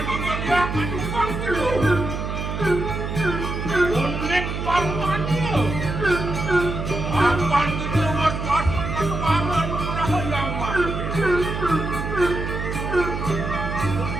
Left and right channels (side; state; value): right; noise; hum, 4 dB below the sound